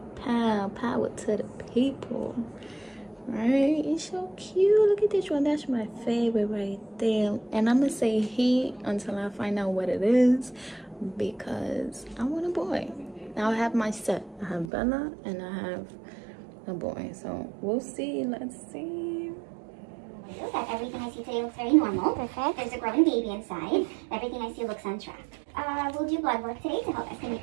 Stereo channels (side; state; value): left; drops out; at 14.7 s